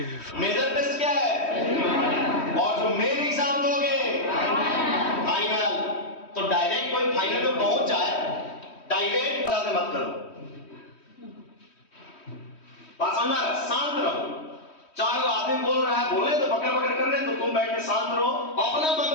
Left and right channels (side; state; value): right; late; 3.1 ms